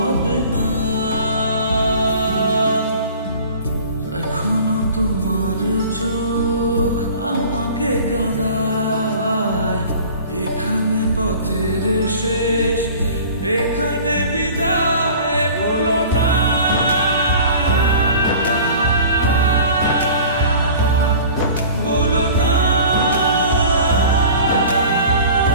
না। এখনো তোমার চোখ আমাকে কাঁদায়, এখানে পথের শেষ, এখানে বিদায় বলো না। বলো না,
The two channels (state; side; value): inverted; both; correlation -0.43